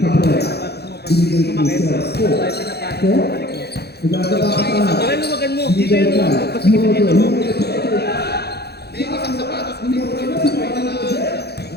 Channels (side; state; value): right; late; 0.47 ms